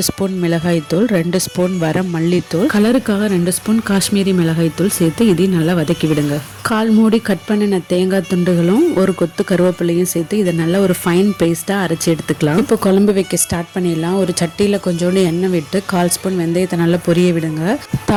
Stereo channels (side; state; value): both; identical; correlation 1.00